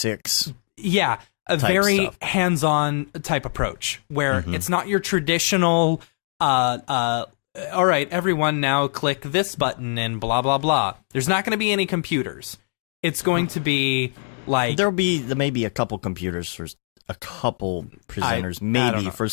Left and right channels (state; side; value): silent; right; digital silence